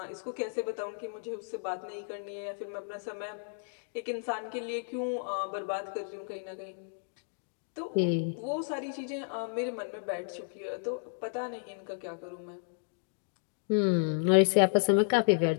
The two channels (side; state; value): right; silent; digital silence